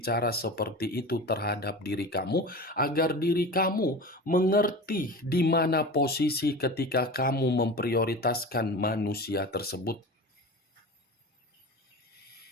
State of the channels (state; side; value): normal; both; correlation 0.32